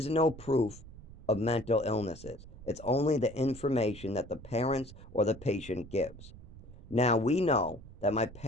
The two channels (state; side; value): noise; right; rumble, 17 dB below the sound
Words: no proof of mental illnesses. It's only the information that the parents or the patient gives. Now, we know that my